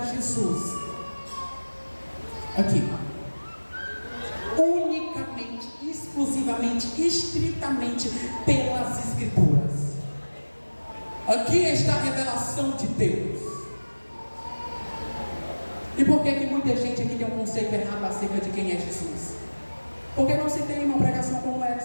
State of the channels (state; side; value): inverted; both; correlation -1.00